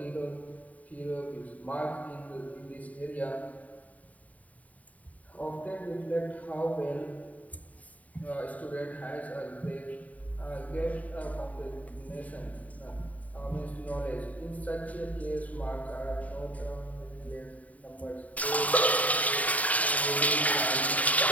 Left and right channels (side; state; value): right; late; 0.071 ms